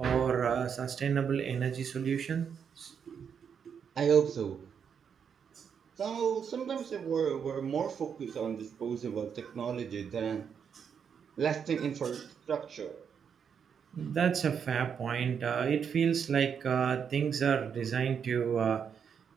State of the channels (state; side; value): quieter; left; 7.2 dB